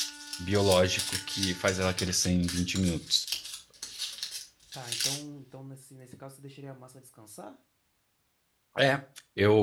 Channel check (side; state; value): both; identical; correlation 1.00